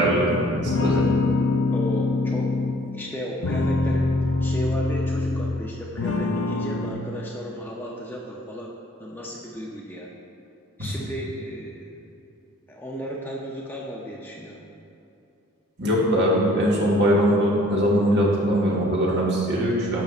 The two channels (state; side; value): normal; both; correlation 0.56